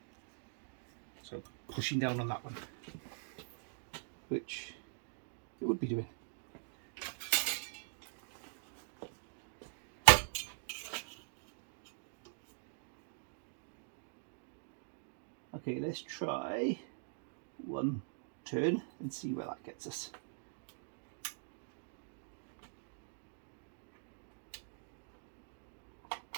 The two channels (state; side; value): silent; left; digital silence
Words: So pushing down on that one, which it would be doing. Okay, let's try one turn and see where that gets us.